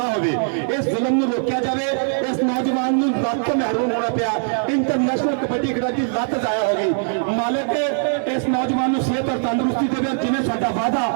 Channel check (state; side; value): silent; left; digital silence